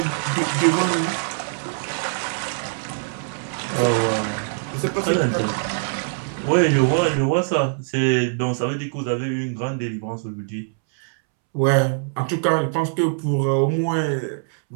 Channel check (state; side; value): silent; left; 64 dB below the other